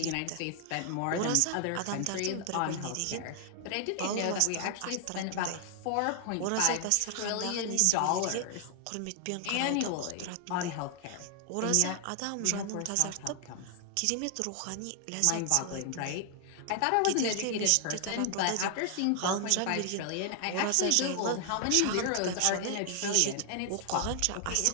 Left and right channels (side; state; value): both; different; correlation 0.00